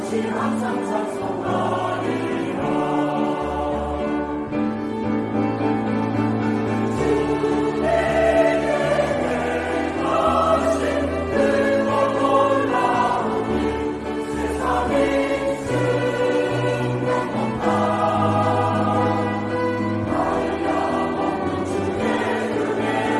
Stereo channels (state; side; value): identical; both; correlation 1.00